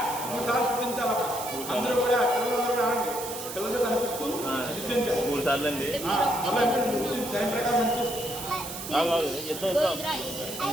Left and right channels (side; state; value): right; noise; hiss, 9 dB below the sound